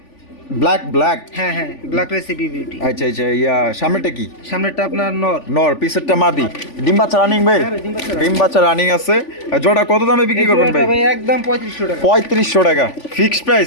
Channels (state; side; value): late; right; 3.5 ms